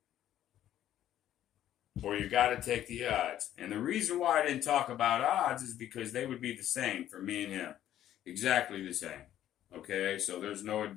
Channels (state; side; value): quieter; right; 11.9 dB